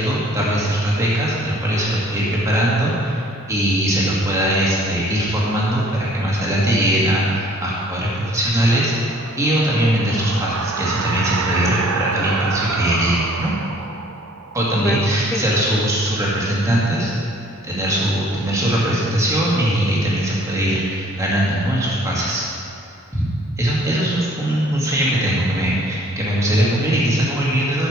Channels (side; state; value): both; normal; correlation 0.56